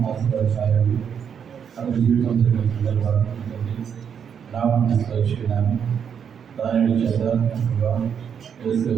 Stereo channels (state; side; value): quieter; left; 7.6 dB